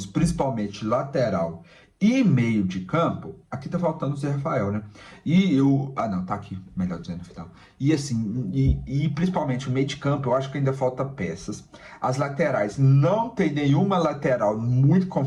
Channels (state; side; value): identical; both; correlation 1.00